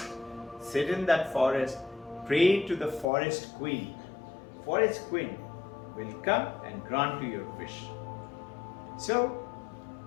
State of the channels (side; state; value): right; drops out; at 3.1 s